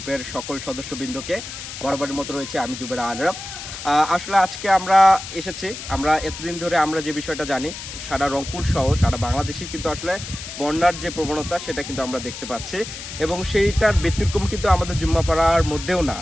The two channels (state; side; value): noise; left; hiss, 10 dB below the sound